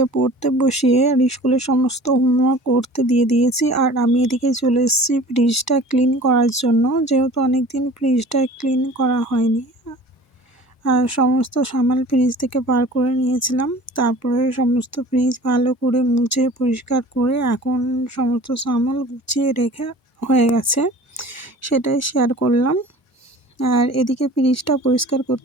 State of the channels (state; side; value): normal; both; correlation 0.44